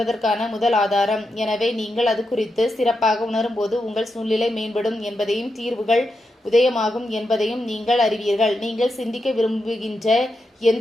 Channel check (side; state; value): both; normal; correlation 0.86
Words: முதல் ஆதாரம். எனவே நீங்கள் அது குறித்து சிறப்பாக உணரும்போது உங்கள் சூழ்நிலை மேம்படும் என்பதையும் தீர்வுகள் உதயமாகும் என்பதையும் நீங்கள் அறிவீர்கள். நீங்கள் சிந்திக்க விரும்புகின்ற